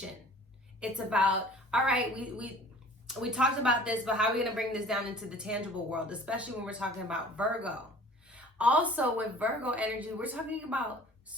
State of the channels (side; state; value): both; normal; correlation 0.48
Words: It's about, all right, we talked about this, but how are we gonna bring this down into the tangible world, especially when we're talking about Virgo? Also with Virgo energy, we're talking about